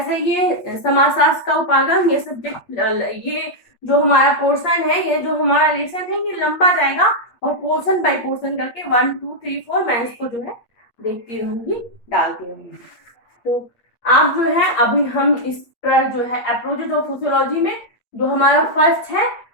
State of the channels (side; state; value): right; late; 8.5 ms